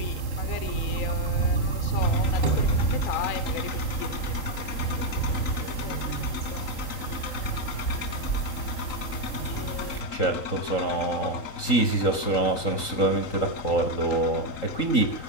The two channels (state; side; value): late; right; 3.8 ms